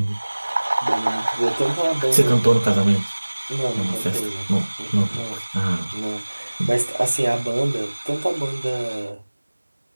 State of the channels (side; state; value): both; inverted; correlation -1.00